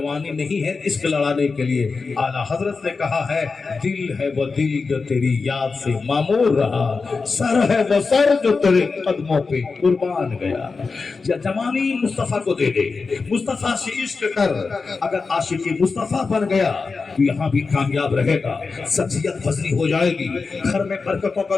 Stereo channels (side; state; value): right; quieter; 4.5 dB